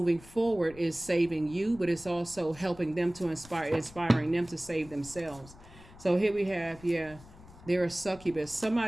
forward is saving you, but it's also helping them to inspiring them to save themselves. So here we have, yeah, they're a succubus.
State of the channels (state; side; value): noise; left; rumble, 21 dB below the sound